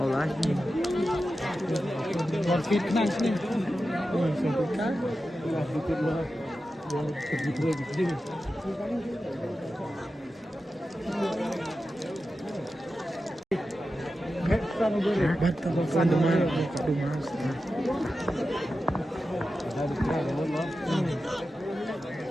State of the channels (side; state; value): both; normal; correlation 0.92